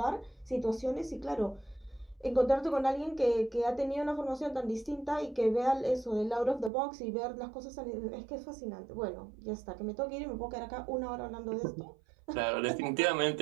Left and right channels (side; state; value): left; drops out; at 6.7 s